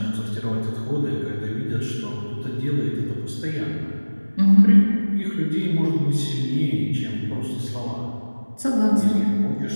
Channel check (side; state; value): both; inverted; correlation -1.00